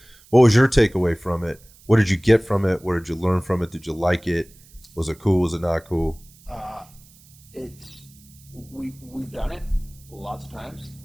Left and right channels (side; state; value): right; noise; hiss, 26 dB below the sound